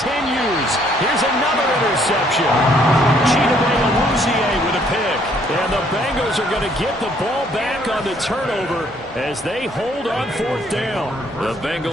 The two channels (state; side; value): normal; both; correlation 0.65